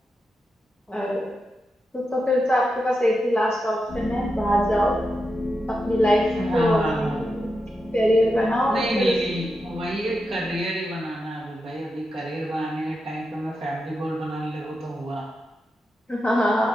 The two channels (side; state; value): both; normal; correlation 0.88